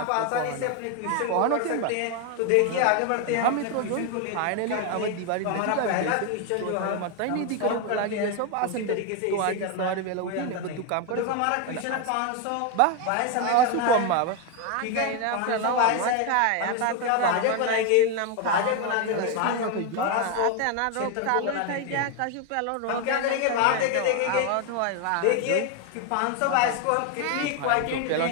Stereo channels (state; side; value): different; both; correlation 0.01